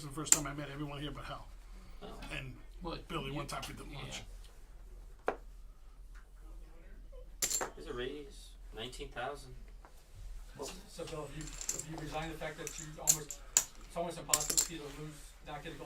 is the first time I met everyone here but Hal. Oh. And Billy, one time we did lunch. Here's a raise. 19,000. So Bill, have you resigned the fact that it's almost impossible for you to lose, not get a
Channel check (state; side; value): identical; both; correlation 1.00